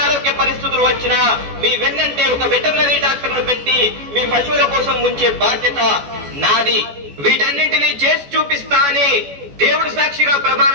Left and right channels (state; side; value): late; left; 14 ms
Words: పరిస్థితులు వచ్చినా మీ వెన్నంటే ఒక వెటర్నరీ డాక్టర్ను పెట్టి మీ పశువుల కోసం ఉంచే బాధ్యత నాది. వీటన్నింటినీ చేసి చూపిస్తా అని దేవుడి సాక్షిగా